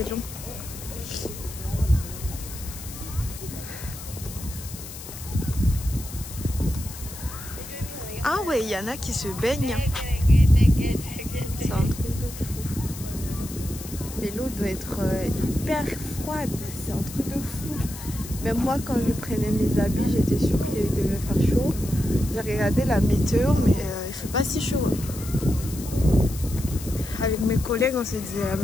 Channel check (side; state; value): left; noise; hiss, 13 dB below the sound